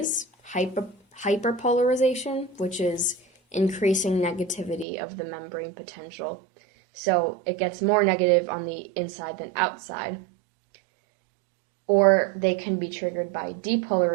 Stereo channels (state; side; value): drops out; left; at 4.9 s